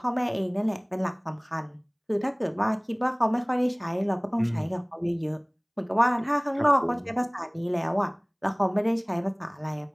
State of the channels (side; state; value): both; identical; correlation 1.00